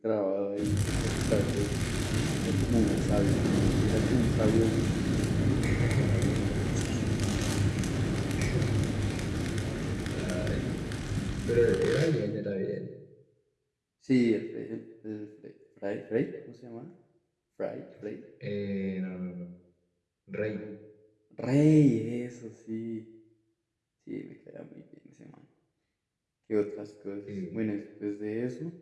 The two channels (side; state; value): both; identical; correlation 1.00